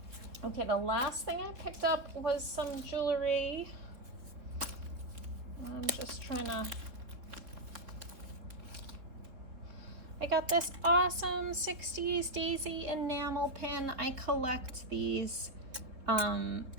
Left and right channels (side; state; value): left; late; 3.6 ms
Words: Okay, the last thing I picked up was some jewelry. I'm just trying to... I got this awesome 60s Daisy enamel pin. I collect these